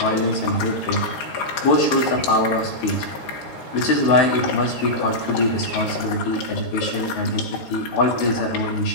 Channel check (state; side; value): late; right; 13 ms